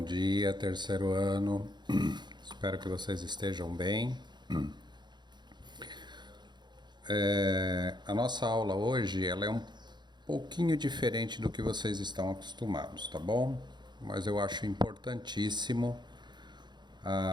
dia, terceiro ano. Espero que vocês estejam bem. A nossa aula hoje ela é um pouquinho diferente do que vocês estão acostumados, tá bom? Mas eu acho importantíssimo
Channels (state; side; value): late; left; 0.21 ms